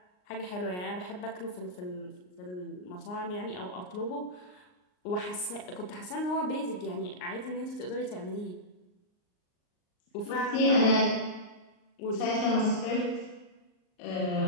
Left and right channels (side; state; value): right; late; 39 ms